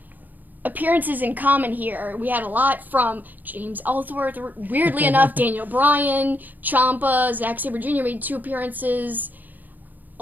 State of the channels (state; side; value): late; left; 0.085 ms